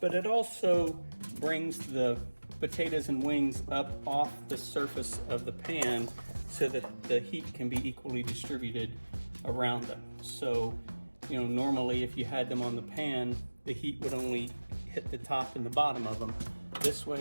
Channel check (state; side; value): inverted; both; correlation -1.00